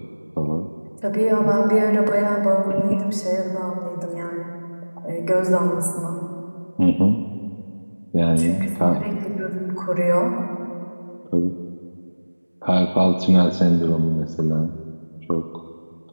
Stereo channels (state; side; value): inverted; both; correlation -1.00